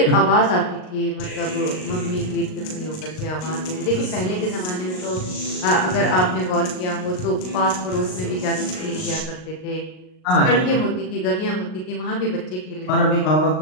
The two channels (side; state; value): right; late; 38 ms